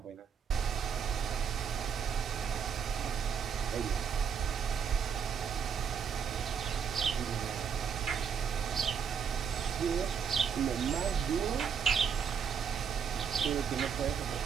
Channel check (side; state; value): left; quieter; 7.0 dB